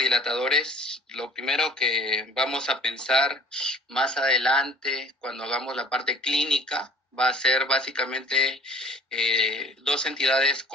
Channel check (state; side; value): normal; both; correlation 0.49